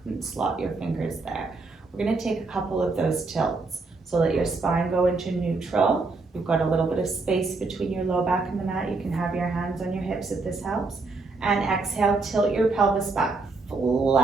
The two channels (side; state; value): left; quieter; 3.8 dB